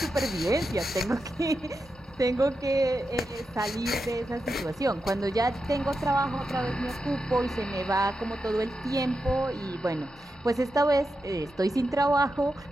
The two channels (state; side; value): normal; both; correlation 0.88